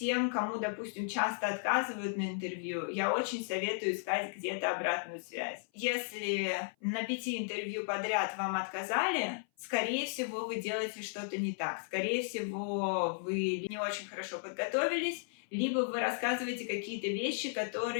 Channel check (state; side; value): silent; right; 55 dB below the other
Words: кому, допустим, часто отказывают на интервью, я очень советую искать где-то обратную связь. Если на 5 интервью подряд вам отказали, скорее всего, вы делаете что-то не так. Скорее всего, вы не очень хорошо подготовились, либо вы рассказываете какие-то вещи,